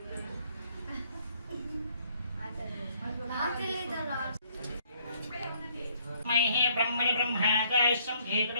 మహే బ్రహ్మణి బ్రహ్మణాదాయసం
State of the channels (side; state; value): both; inverted; correlation -0.65